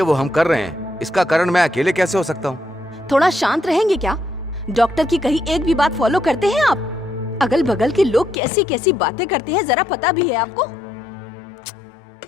हम कर रहे हैं। इसका कारण मैं अकेले कैसे हो सकता हूँ? थोड़ा शांत रहेंगे क्या? डॉक्टर की कही एक भी बात फॉलो करते हैं आप? अगल बगल के लोग कैसी कैसी बातें करते हैं, जरा पता भी है आपको?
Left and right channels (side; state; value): right; drops out; at 8.3 s